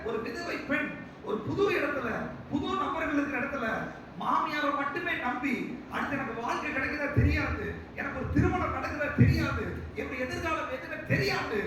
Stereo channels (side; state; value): both; identical; correlation 1.00